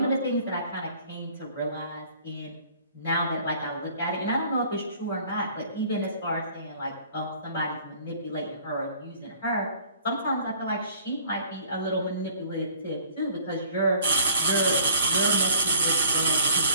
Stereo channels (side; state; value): both; inverted; correlation -0.54